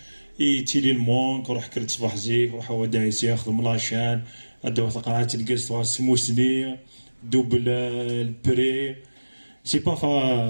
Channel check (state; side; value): inverted; both; correlation -1.00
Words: تيلي المونك روح كرت صباح زيك روح هو دايس ياخذ ملاشان ادو قرعات الكاس سموسني دوبل البري سي با